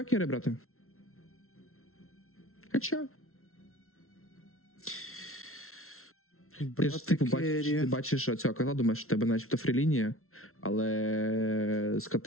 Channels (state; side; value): late; right; 0.62 ms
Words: керрі брати. Хоча. Ти ж типу бачиш цього котла, думаєш, що в тебе начебто фрілінія, але з